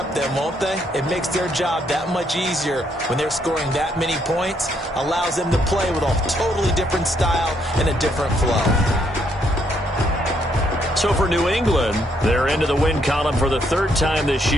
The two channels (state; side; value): normal; both; correlation 0.72